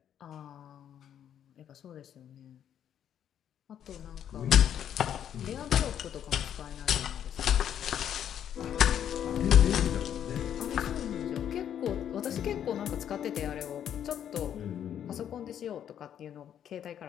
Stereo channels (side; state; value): right; quieter; 9.7 dB